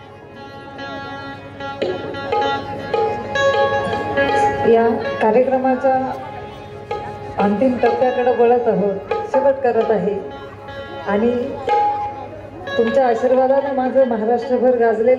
या कार्यक्रमाच्या अंतिम टप्प्याकडे वळत आहोत, शेवट करत आहे आणि तुमच्या आशीर्वादाने माझं महाराष्ट्रभर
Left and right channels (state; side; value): identical; both; correlation 1.00